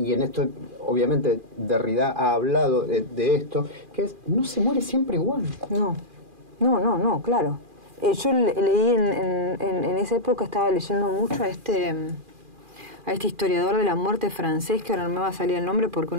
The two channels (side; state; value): left; late; 2.4 ms